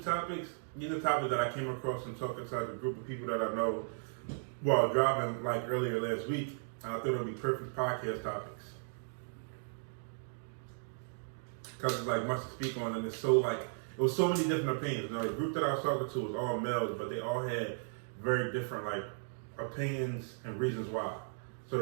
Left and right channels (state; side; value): silent; left; digital silence